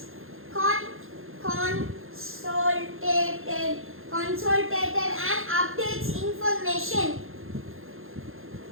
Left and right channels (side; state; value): left; late; 0.60 ms